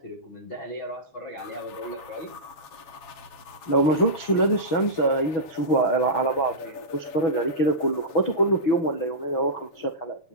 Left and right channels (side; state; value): right; late; 7.2 ms